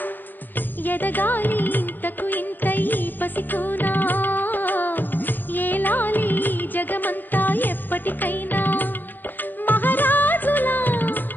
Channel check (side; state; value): right; late; 0.089 ms